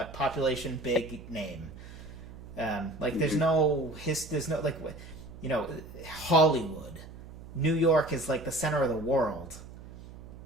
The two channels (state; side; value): noise; right; hum, 15 dB below the sound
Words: population, big name. There's no Hollywood. New York is like the center of the world.